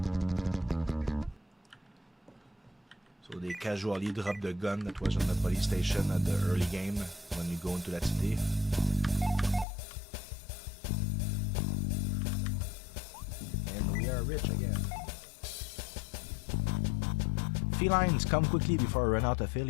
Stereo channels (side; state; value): right; drops out; at 9.7 s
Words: So they casually drop the gun that was on the police station at the early game when you go into that city. And we are rich again. Felines, come quickly before I run out of